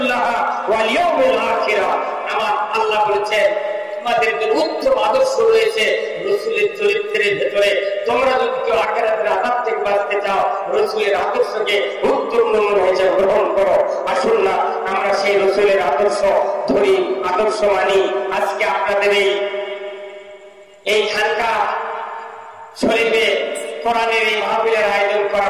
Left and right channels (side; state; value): both; identical; correlation 1.00